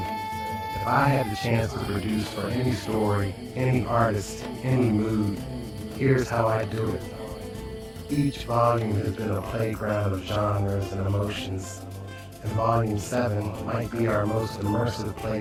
if I had the chance to produce for any story, any artist, any mood, here's how I do it. Each volume has been a playground of genres and emotions, and Volume 7 might be our most immersive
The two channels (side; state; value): both; identical; correlation 1.00